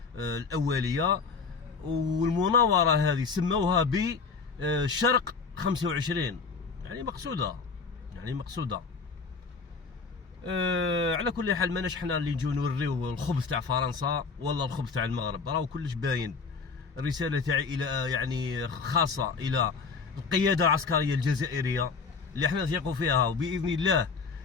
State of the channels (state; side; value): quieter; right; 4.9 dB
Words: الأولية. والمناورة هذه سموها بشرق 25، يعني مقصودة. على كل حال ماناش حنا اللي نجيو نوريو الخبث تاع فرنسا ولا الخبث تاع المغرب، راهو كلش باين. الرسالة تاعي إلى يعني خاصة إلى القيادة العسكرية الجزائرية اللي احنا نثيقوا فيها، وبإذن الله